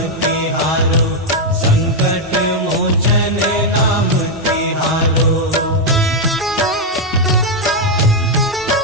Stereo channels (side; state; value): both; normal; correlation 0.00